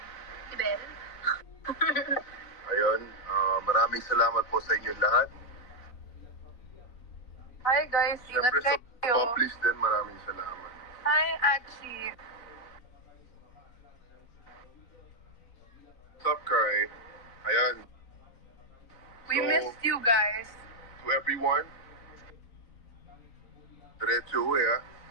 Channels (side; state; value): right; late; 4.1 ms